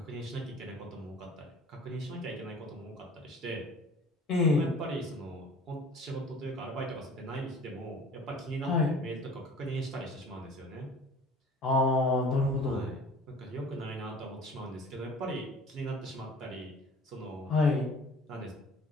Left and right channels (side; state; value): both; normal; correlation 0.46